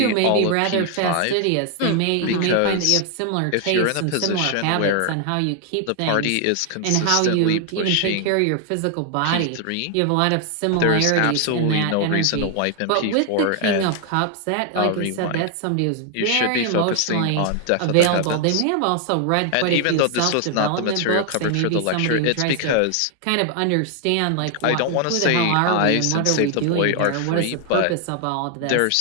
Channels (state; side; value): different; both; correlation 0.00